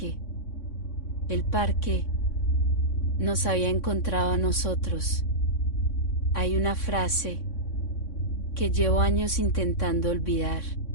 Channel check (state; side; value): late; right; 3.6 ms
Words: El parque nos había encontrado a nosotros. Hay una frase que llevo años intentando olvidar,